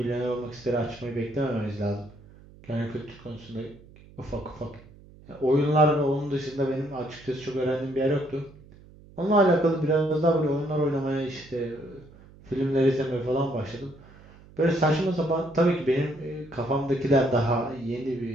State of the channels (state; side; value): noise; right; hum, 23 dB below the sound